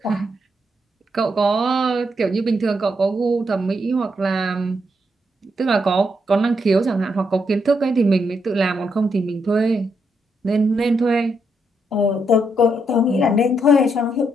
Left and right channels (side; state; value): both; normal; correlation 0.79